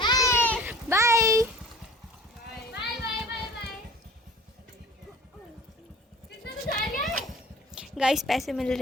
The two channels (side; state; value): both; normal; correlation 0.45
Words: बाय। गाइस पैसे मिल